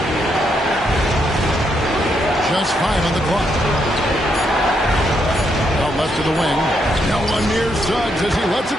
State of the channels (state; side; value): normal; both; correlation 0.77